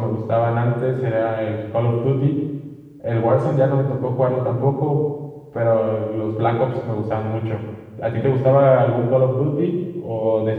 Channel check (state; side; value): identical; both; correlation 1.00